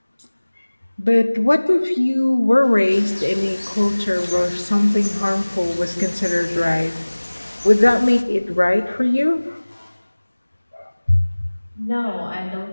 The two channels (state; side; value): inverted; both; correlation -1.00